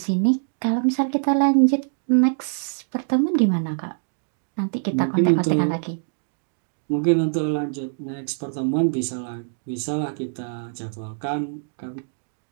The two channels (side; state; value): left; silent; digital silence